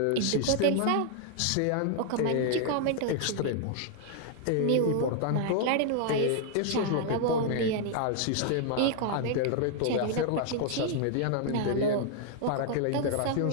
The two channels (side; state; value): both; different; correlation 0.00